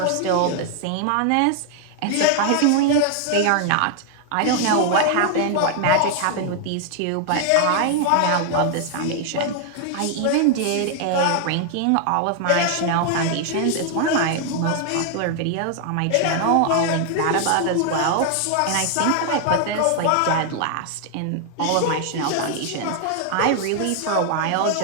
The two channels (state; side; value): different; both; correlation 0.00